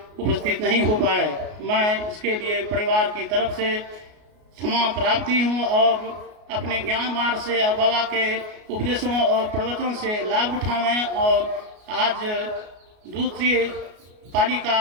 उपस्थित नहीं हो पाए। मैं इसके लिए परिवार की तरफ से क्षमा प्राप्ति हूँ और अपने ज्ञान मार्ग से और बाबा के उपदेशों और प्रवचन से लाभ उठावें। और आज दूसरी पाली का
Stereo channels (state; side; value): late; left; 33 ms